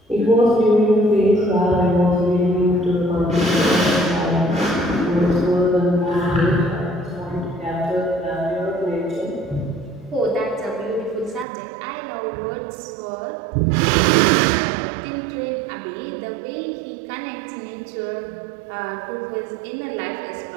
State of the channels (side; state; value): left; drops out; at 11.5 s